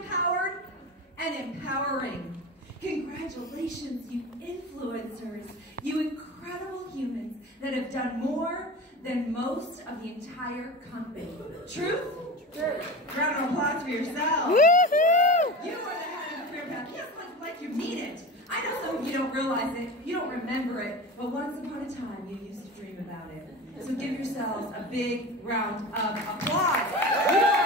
and empowering. Congratulations, you influencers, you incredible humans that have done more than most of the entire company. Truth? True. Round of applause for yourselves. Woohoo! You are the head of the career path. Yes, like you mean it. I know some of you don't realize it, you don't remember it, but once upon a time you used to dream about it. So give yourselves a big round of applause.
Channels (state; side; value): normal; both; correlation 0.30